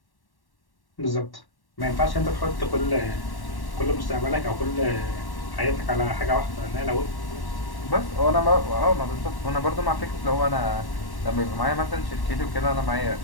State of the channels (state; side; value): late; right; 1.1 ms